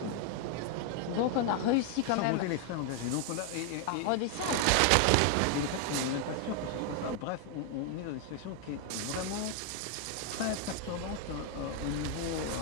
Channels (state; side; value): different; both; correlation 0.00